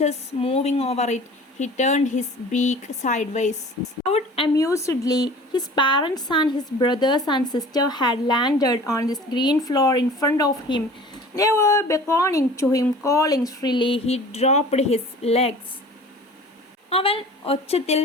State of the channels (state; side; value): normal; both; correlation 0.44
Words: moving over it. He turned his beak sideways. Out amusedly, his parents and his brothers and sister had landed on this green floor in front of him. They were beckoning to him, calling shrilly. He dropped his legs. അവൻ ഒച്ചത്തിൽ